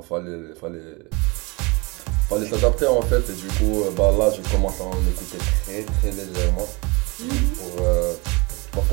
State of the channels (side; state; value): left; quieter; 27.3 dB